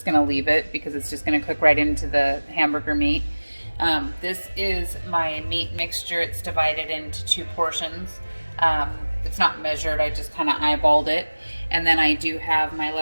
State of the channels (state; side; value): inverted; both; correlation -1.00